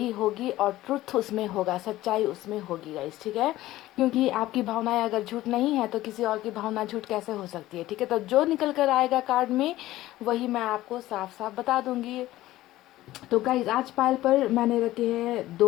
होगी और ट्रुथ उसमें होगा, सच्चाई उसमें होगी गाइस, ठीक है। क्योंकि आपकी भावनाएं अगर झूठ नहीं है तो किसी और की भावना झूठ कैसे हो सकती है, ठीक है। तो जो निकल कर आएगा कार्ड में वही मैं आपको साफ साफ बता दूंगी। तो गाइज आज पायल पर मैंने रखे हैं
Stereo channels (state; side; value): quieter; right; 15.9 dB